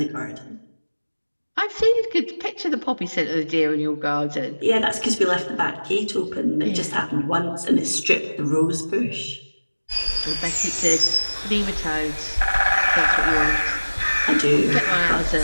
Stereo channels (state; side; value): inverted; both; correlation -1.00